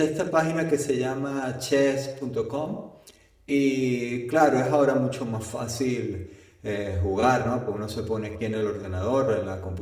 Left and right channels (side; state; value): both; identical; correlation 1.00